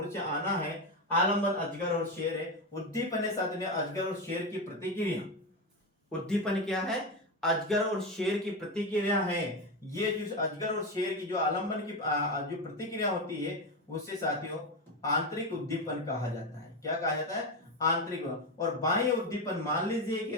आना है। आलंबन अजगर और शेर है। उद्दीपन है साथियों अजगर और शेर की प्रतिक्रिया। उद्दीपन क्या है? अजगर और शेर की प्रतिक्रिया है। ये जो अजगर और शेर की जो आलंबन की जो प्रतिक्रिया होती है उससे साथियों आंतरिक उद्दीपन कहा जाता है। क्या कहा जाता है? आंतरिक। और बाह्य उद्दीपन मान लीजिए कि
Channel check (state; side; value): normal; both; correlation 0.14